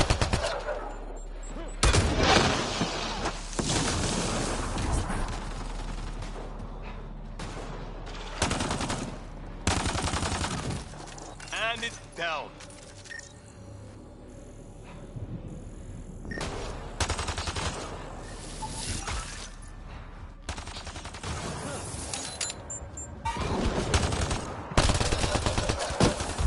And it's down.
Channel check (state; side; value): identical; both; correlation 1.00